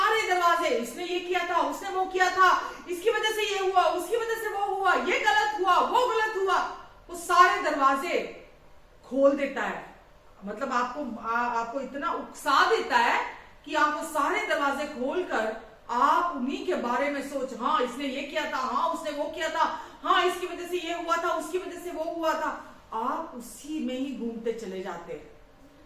दरवाजे, इसने ये किया था, उसने वो किया था, इसकी वजह से ये हुआ, उसकी वजह से वो हुआ, ये गलत हुआ, वो गलत हुआ, वो सारे दरवाजे खोल देता है। मतलब आपको इतना उकसा देता है कि आप वो सारे दरवाजे खोलकर आप उन्हीं के बारे में सोच, हाँ इसने ये किया था, हाँ उसने वो किया था, हाँ इसकी वजह से ये हुआ था, उसकी वजह से वो हुआ था। आप उसी में ही घूमते चले जाते हैं।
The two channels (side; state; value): both; identical; correlation 1.00